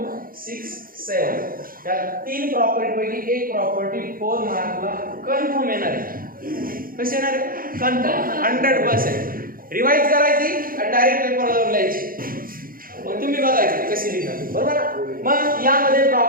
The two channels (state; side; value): late; left; 0.41 ms